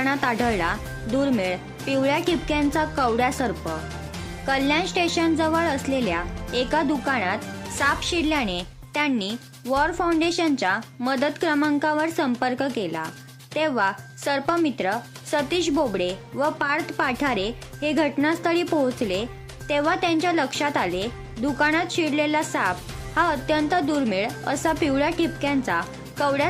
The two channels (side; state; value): both; identical; correlation 1.00